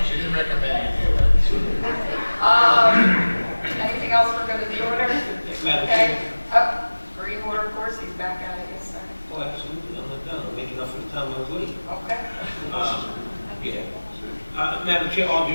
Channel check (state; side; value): inverted; both; correlation -1.00